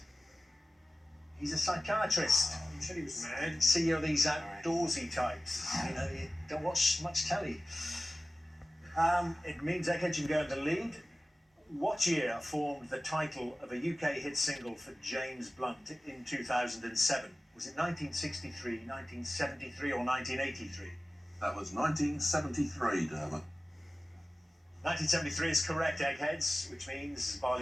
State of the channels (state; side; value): normal; both; correlation 0.97